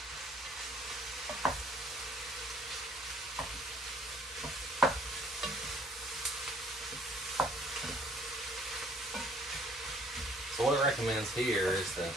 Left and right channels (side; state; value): both; normal; correlation 0.60